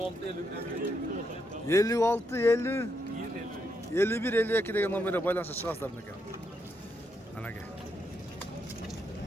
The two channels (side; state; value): both; normal; correlation 0.79